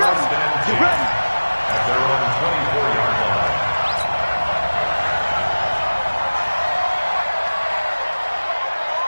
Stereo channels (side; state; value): both; inverted; correlation -1.00